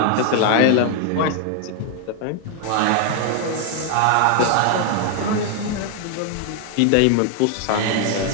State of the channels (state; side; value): different; both; correlation 0.00